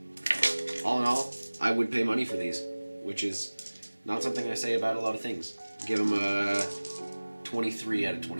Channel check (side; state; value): both; inverted; correlation -1.00